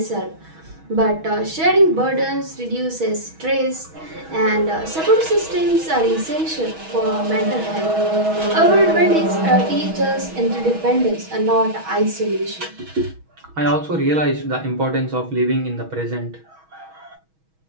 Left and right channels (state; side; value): late; left; 6.2 ms